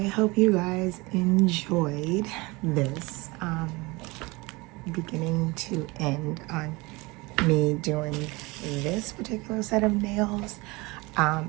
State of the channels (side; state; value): left; quieter; 24.3 dB